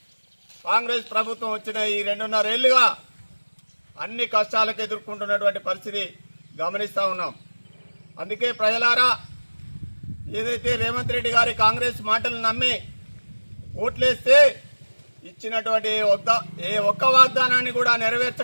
కాంగ్రెస్ ప్రభుత్వం వచ్చిన ఈ 2.5 ఏళ్లుగా అన్ని కష్టాలకు ఎదుర్కొంటున్నటువంటి పరిస్థితి గమనిస్తూ ఉన్నాం. అందుకే ప్రజలారా, ఏదైతే రేవంత్ రెడ్డి గారి కాంగ్రెస్ మాటలు నమ్మి ఓట్లేస్తే ఇచ్చినటువంటి ఏ ఒక్క వాగ్దానాన్ని కూడా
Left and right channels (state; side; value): inverted; both; correlation -1.00